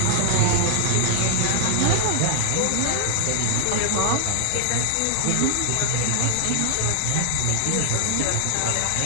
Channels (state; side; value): different; both; correlation 0.00